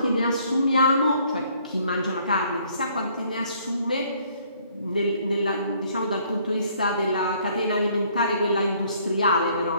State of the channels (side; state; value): both; inverted; correlation -0.63